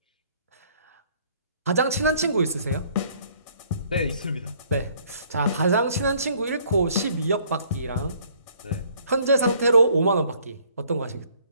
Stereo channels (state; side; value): inverted; both; correlation -0.61